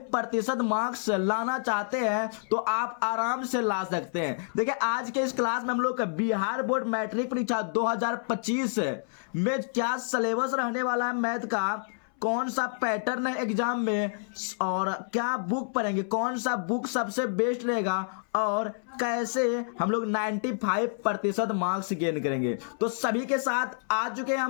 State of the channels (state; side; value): silent; right; 59 dB below the other